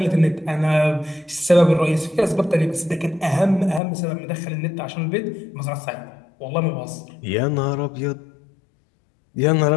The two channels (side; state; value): right; drops out; at 3.8 s